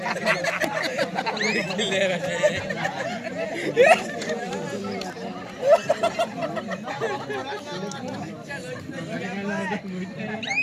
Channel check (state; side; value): identical; both; correlation 1.00